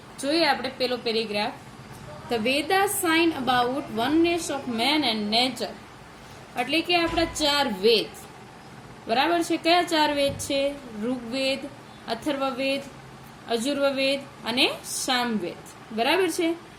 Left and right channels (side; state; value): both; identical; correlation 1.00